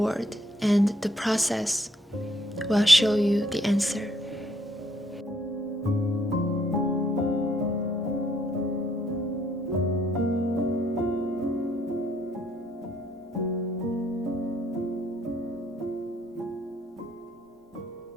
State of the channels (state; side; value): normal; both; correlation 0.69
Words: and the process will show you the answer.